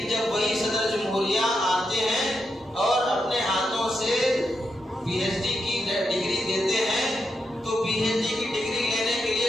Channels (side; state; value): both; normal; correlation 0.84